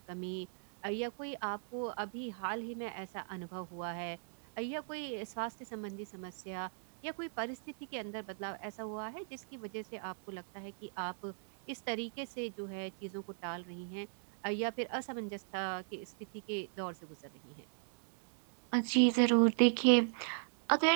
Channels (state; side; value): silent; left; digital silence